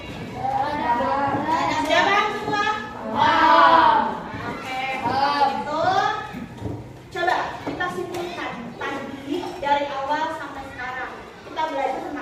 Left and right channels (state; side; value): identical; both; correlation 1.00